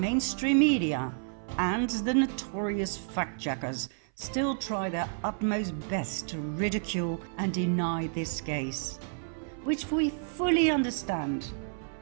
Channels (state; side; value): silent; left; 58 dB below the other